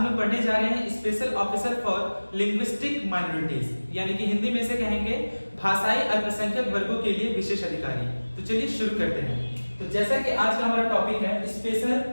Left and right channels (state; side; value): inverted; both; correlation -1.00